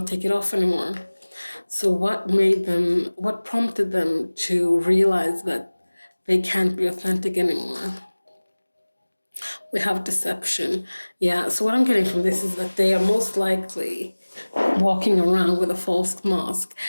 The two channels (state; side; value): inverted; both; correlation -1.00